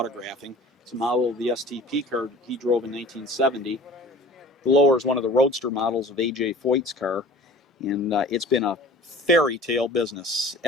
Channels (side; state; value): both; normal; correlation 0.43